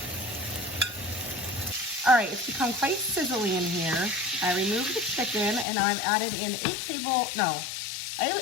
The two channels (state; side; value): drops out; right; at 5.7 s